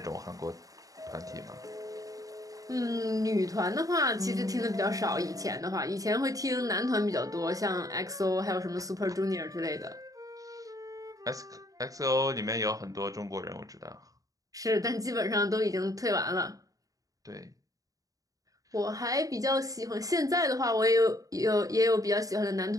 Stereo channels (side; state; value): left; late; 0.17 ms